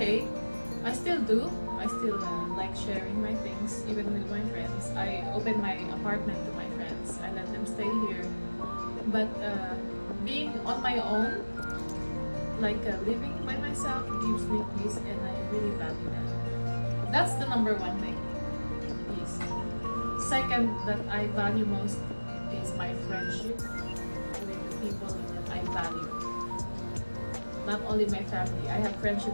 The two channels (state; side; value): inverted; both; correlation -1.00